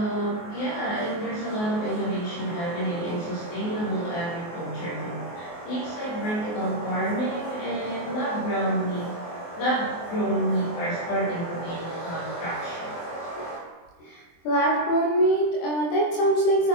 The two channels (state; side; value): late; right; 23 ms